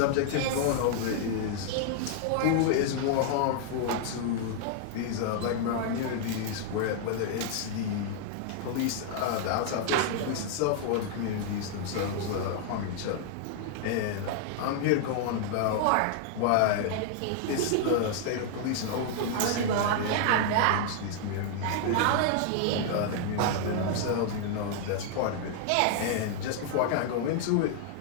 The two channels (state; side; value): different; both; correlation -0.01